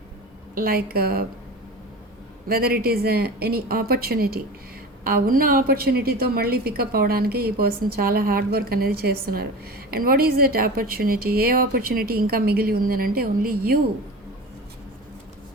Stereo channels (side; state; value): both; normal; correlation 0.32